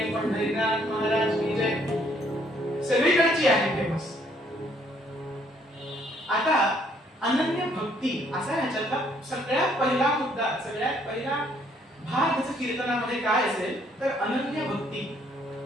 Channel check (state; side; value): normal; both; correlation 0.66